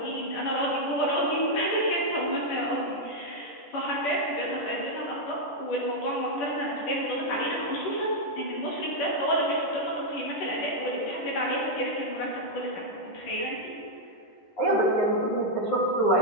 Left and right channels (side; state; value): right; late; 10 ms